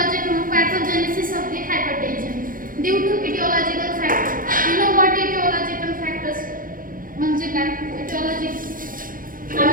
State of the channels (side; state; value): left; late; 0.40 ms